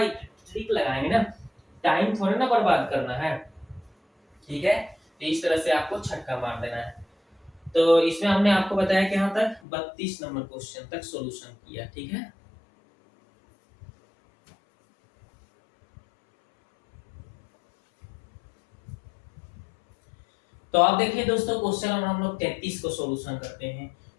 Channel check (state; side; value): drops out; right; at 9.6 s